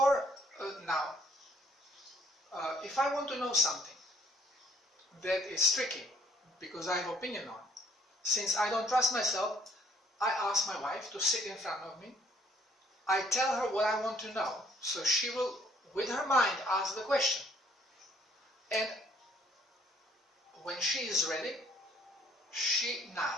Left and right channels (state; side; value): normal; both; correlation 0.62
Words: If I want to know something that is tricky, because I have opinion on, since I don't trust myself, I ask my wife to sit in front of me. I tell her what I want to know, so she will, with her mind, ask the question. And when she is ready, she